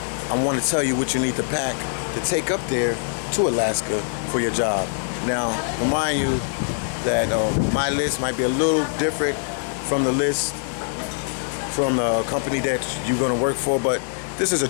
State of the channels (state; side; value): silent; right; digital silence